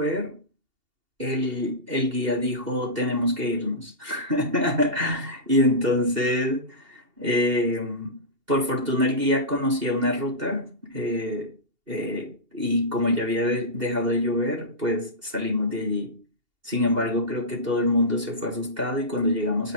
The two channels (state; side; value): late; left; 2.8 ms